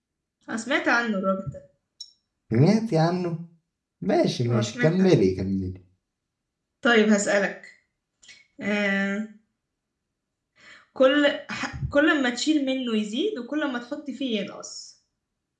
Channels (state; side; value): identical; both; correlation 1.00